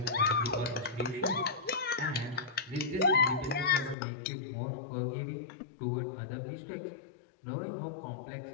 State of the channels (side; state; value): right; drops out; at 4.0 s